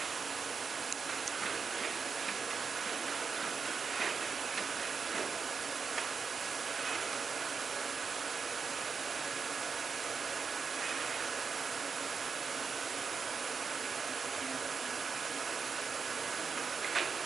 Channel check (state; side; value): quieter; left; 5.4 dB